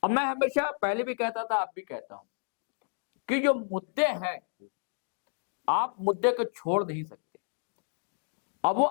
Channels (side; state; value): right; silent; digital silence